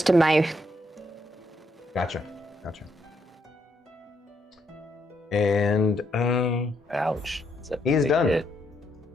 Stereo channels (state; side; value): normal; both; correlation 0.76